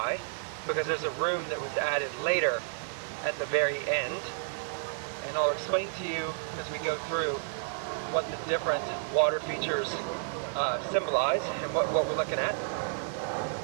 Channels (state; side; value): silent; left; digital silence